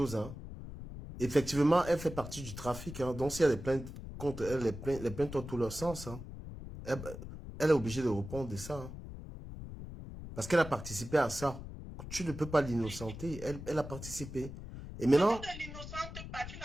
Hein. Effectivement, elle fait partie du trafic. Hein. Donc s'il y a des plaintes contre elle, les plaintes ont tout leur sens. Hein. Elle est obligée de répondre de ça. Hein. Parce qu'elle a participé à ça. Tu ne peux pas l'innocenter. Elle a participé. Et maintenant...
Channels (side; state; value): left; noise; rumble, 11 dB below the sound